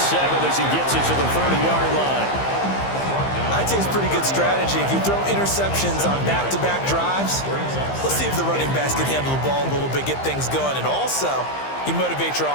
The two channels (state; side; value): late; right; 15 ms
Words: as he gets it to the 30-yard line. I'd say it's pretty good strategy. If you throw interceptions on back-to-back drives, let's see if the running backs can handle the ball a little bit, get things going, and also you motivate your